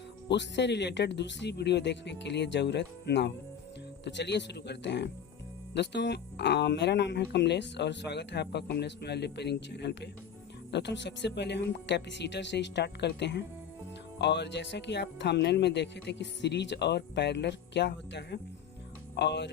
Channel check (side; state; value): right; quieter; 7.9 dB